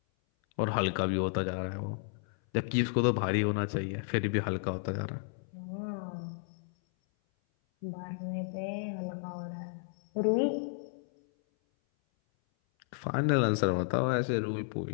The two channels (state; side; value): silent; right; 56 dB below the other